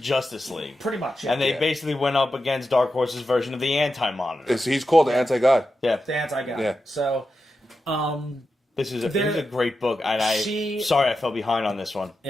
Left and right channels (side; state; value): both; normal; correlation 0.89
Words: League. Pretty much. And they Yeah. basically went up against Dark Horse's version of the Anti-Monitor. He's called the Anti-God. Yeah. the anti-guy. Yeah. So, This is a great book. And sorry I fell behind on this one.